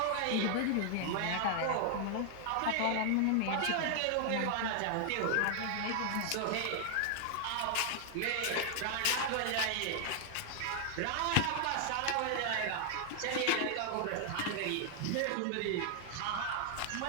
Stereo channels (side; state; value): both; different; correlation 0.00